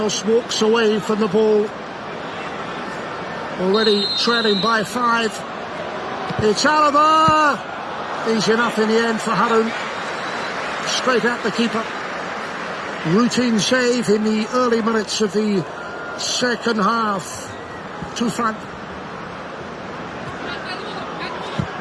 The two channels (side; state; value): both; identical; correlation 1.00